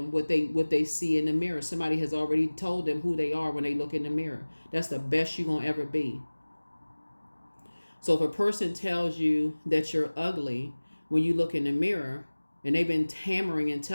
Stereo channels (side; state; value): both; inverted; correlation -1.00